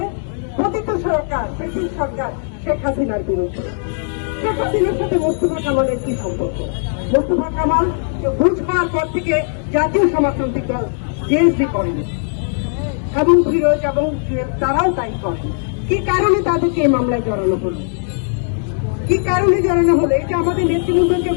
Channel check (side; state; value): right; silent; 67 dB below the other